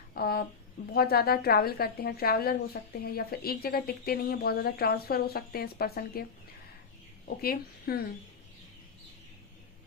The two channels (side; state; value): right; quieter; 5.5 dB